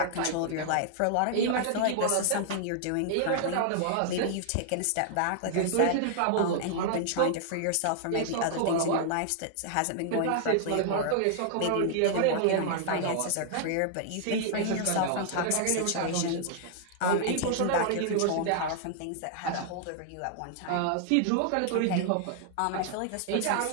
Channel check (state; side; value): different; both; correlation -0.01